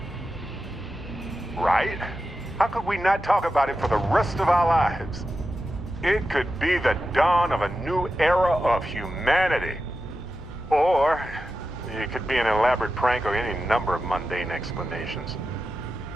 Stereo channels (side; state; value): both; normal; correlation 0.91